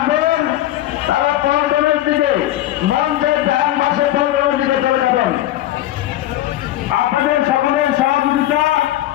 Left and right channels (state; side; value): quieter; right; 14.1 dB